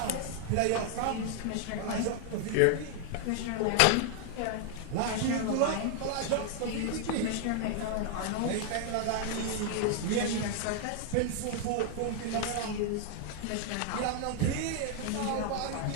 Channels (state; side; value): different; both; correlation 0.00